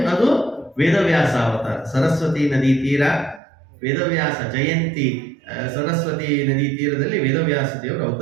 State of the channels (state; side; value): drops out; left; at 3.4 s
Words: ವೇದವ್ಯಾಸ ಅವತಾರ. ಸರಸ್ವತಿ ನದಿ ತೀರ ವೇದವ್ಯಾಸ ಜಯಂತಿ, ಸರಸ್ವತಿ ನದಿ ತೀರದಲ್ಲಿ ವೇದವ್ಯಾಸ ದೇವರು